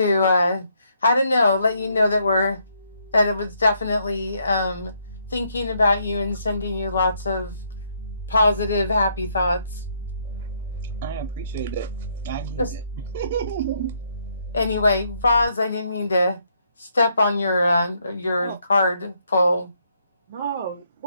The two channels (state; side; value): inverted; both; correlation -0.73